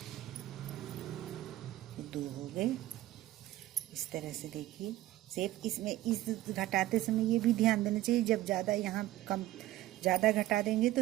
2 हो गए। इस तरह से देखिए शेप। इसमें इस घटाते समय ये भी ध्यान देना चाहिए, जब ज़्यादा यहाँ ज़्यादा घटा देंगे तो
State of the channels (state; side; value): quieter; left; 15.5 dB